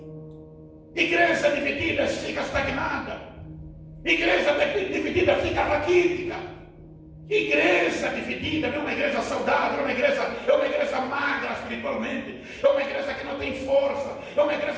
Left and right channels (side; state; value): both; identical; correlation 1.00